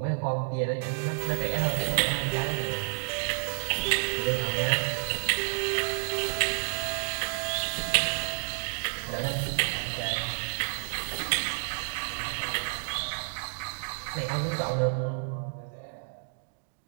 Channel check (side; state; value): left; silent; digital silence